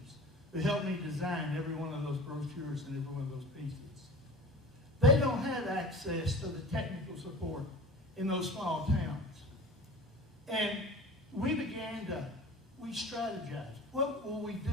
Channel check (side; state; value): both; normal; correlation 0.38